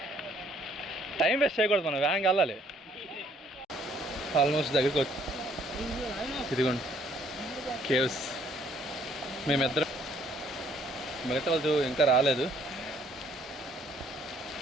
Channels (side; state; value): both; normal; correlation 0.63